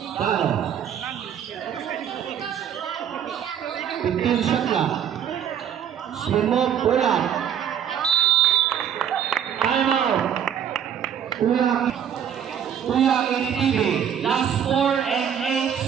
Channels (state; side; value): quieter; left; 8.9 dB